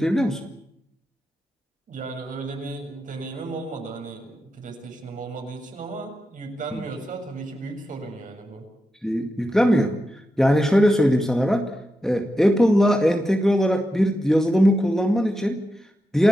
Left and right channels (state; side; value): normal; both; correlation 0.88